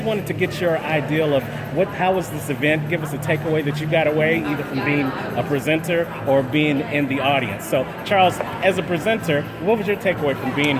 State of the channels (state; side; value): identical; both; correlation 1.00